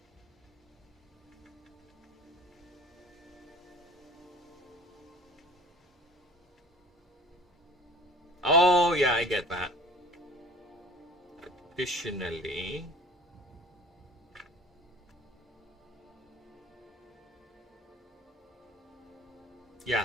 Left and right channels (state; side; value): normal; both; correlation 0.44